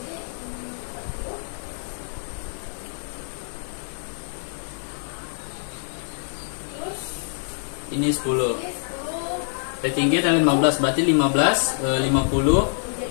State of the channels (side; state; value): right; silent; digital silence